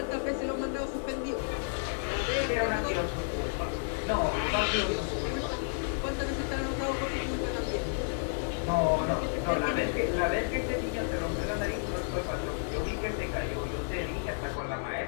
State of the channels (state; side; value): silent; right; 57 dB below the other